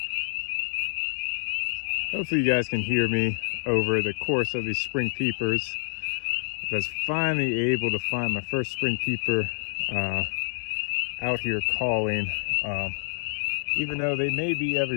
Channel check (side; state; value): right; silent; digital silence